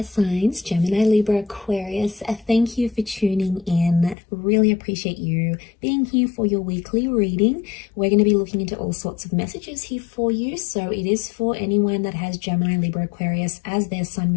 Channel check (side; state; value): right; drops out; at 4.2 s